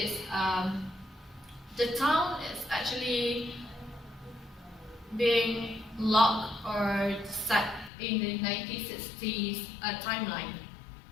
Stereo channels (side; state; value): right; drops out; at 7.9 s